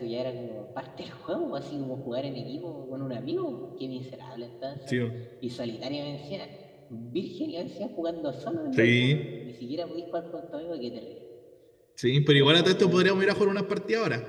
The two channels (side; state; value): both; identical; correlation 1.00